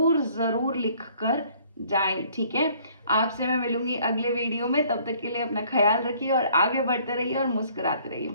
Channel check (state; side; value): inverted; both; correlation -0.59